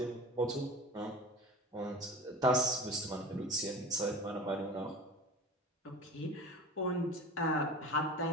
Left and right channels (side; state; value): both; normal; correlation 0.34